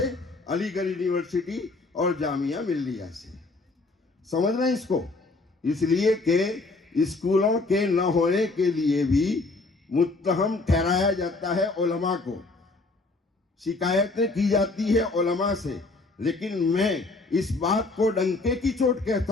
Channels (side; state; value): right; quieter; 3.4 dB